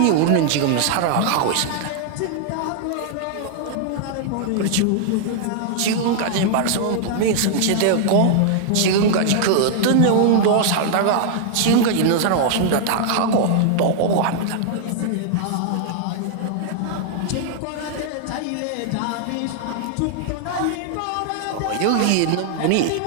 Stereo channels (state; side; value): different; both; correlation -0.01